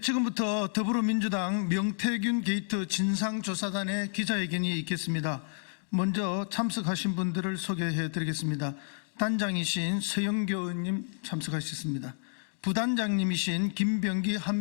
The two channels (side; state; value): right; silent; digital silence